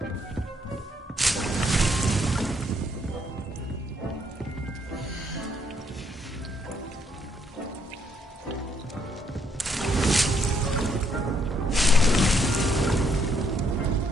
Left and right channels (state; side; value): normal; both; correlation 0.71